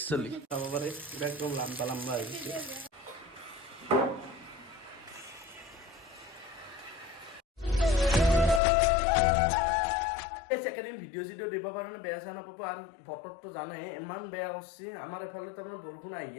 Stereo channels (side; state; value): right; drops out; at 8.6 s